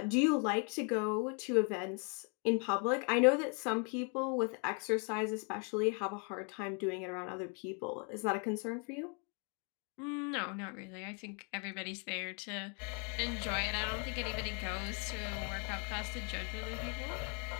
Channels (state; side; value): quieter; right; 36.9 dB